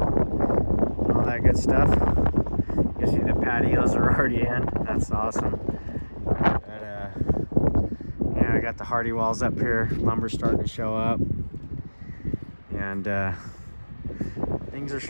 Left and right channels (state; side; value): inverted; both; correlation -1.00